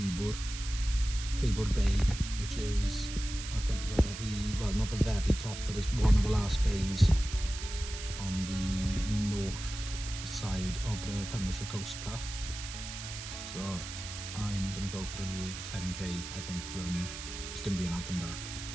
Bay, which is at the very, well, not the very top, but it's one of the last bays on the north side of the Pembrokeshire coast path. So I'm going to go for a little 10k, I think, run. It's going to be an out and back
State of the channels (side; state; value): right; noise; hiss, 9 dB below the sound